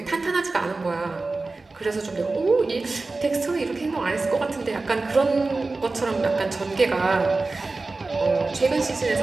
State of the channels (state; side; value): quieter; left; 3.5 dB